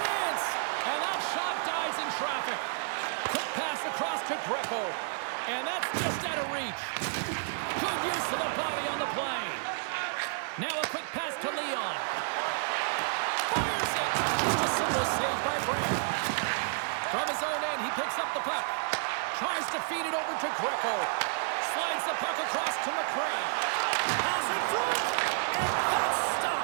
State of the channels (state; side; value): silent; left; digital silence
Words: And that shot dies in traffic. Quick pass across to Greco. And that's just out of reach. Good use of the body on the play. Now a quick pass to Leon. Fires it! Just a simple save by Brandt. From his own end, he picks up the puck. Tries to feed it over to Greco. Slides the puck across to McCray. Pass in front, and that's